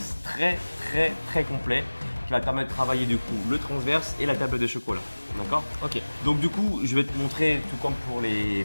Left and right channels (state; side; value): inverted; both; correlation -1.00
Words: très complet qui va te permettre de travailler du coup le transverse et la table de chocolat. D'accord? Ok. Donc du coup, je vais te montrer, tout comme pour